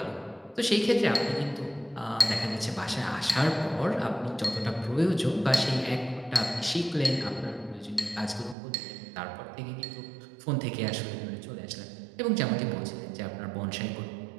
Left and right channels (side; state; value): left; drops out; at 8.6 s